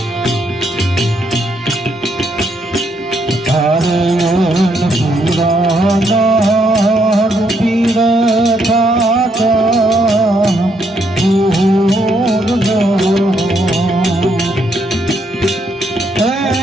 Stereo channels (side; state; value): both; normal; correlation 0.74